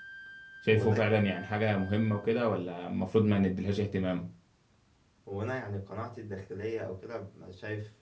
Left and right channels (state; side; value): identical; both; correlation 1.00